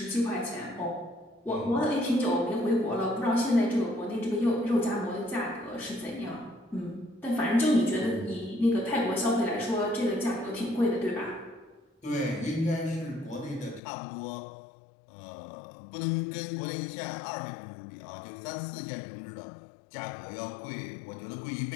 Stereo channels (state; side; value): drops out; right; at 13.8 s